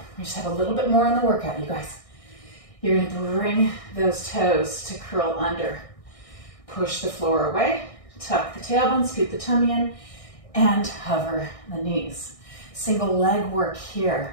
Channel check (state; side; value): late; right; 1.6 ms